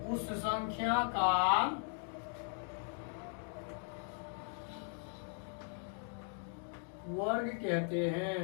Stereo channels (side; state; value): right; silent; 52 dB below the other